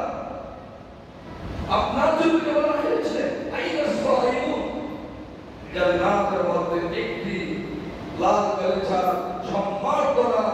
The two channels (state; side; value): identical; both; correlation 1.00